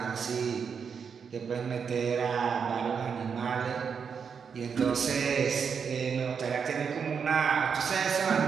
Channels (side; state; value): left; quieter; 6.4 dB